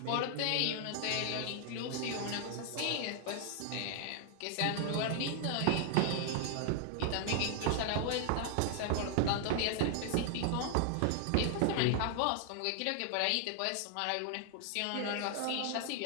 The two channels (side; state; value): both; different; correlation 0.00